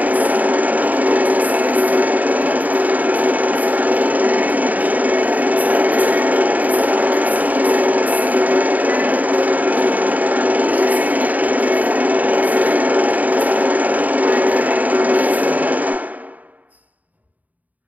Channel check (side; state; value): left; late; 0.076 ms